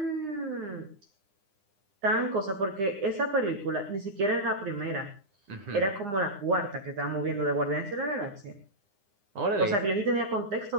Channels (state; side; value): late; left; 9.8 ms